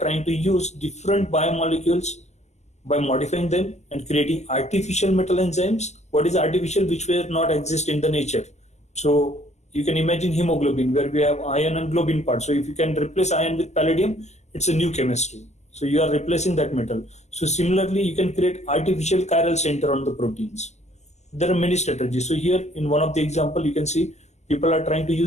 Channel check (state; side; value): late; right; 0.33 ms